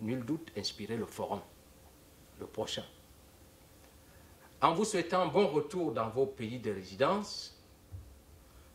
nul doute inspirer le forum, le prochain. En vous souhaitant bon retour dans vos pays de résidence,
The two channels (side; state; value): both; identical; correlation 1.00